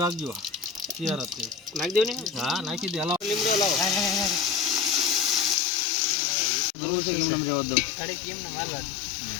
રાખજો તૈયાર જ નાખી દેવ ને હા નાખી દે હલાવ લીમડો હલાવ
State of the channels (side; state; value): right; drops out; at 5.6 s